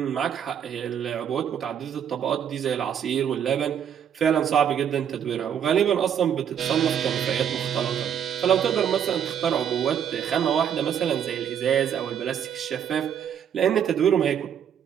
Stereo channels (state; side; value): quieter; left; 8.7 dB